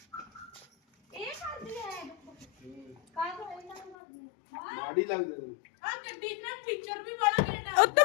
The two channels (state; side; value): drops out; right; at 4.0 s